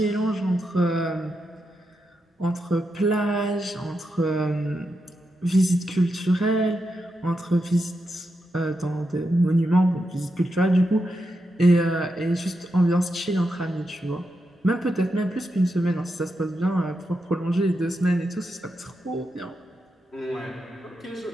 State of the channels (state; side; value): normal; both; correlation 0.86